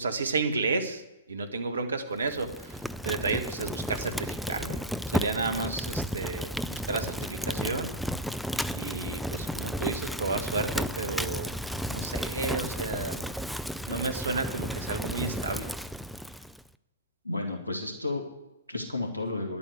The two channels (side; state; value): both; normal; correlation -0.06